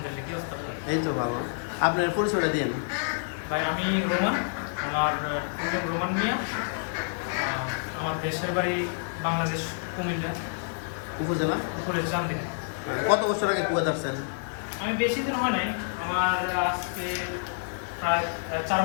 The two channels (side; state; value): right; silent; digital silence